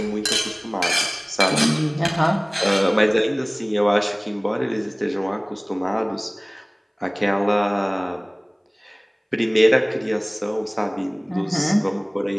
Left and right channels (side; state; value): both; identical; correlation 1.00